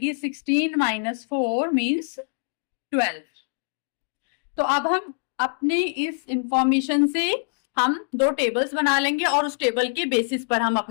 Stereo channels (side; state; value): right; silent; digital silence